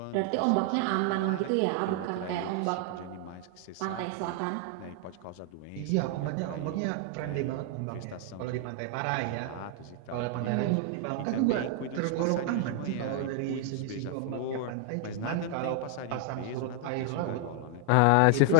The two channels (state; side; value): different; both; correlation 0.00